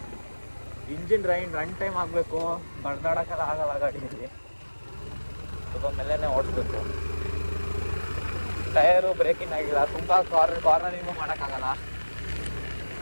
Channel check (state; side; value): inverted; both; correlation -1.00